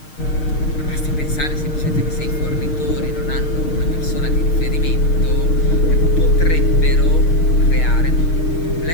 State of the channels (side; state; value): right; late; 6.5 ms